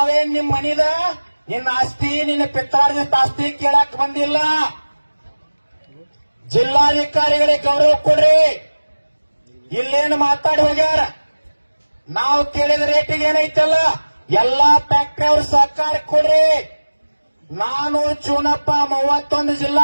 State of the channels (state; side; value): inverted; both; correlation -1.00